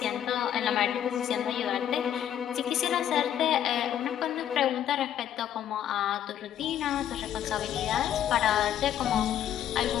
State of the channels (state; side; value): quieter; right; 10.4 dB